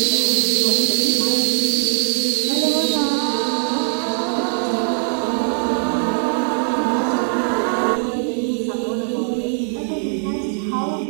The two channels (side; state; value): left; silent; 57 dB below the other